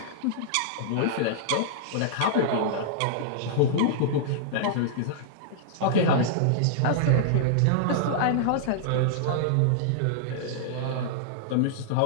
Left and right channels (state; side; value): different; both; correlation -0.02